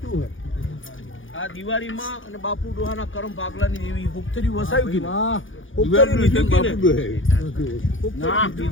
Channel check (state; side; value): late; right; 0.57 ms